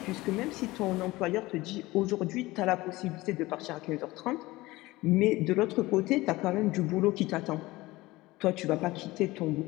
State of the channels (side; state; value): right; quieter; 19.7 dB